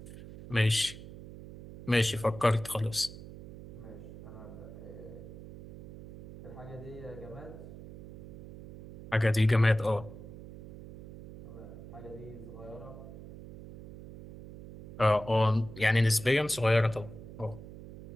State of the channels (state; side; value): noise; right; hum, 15 dB below the sound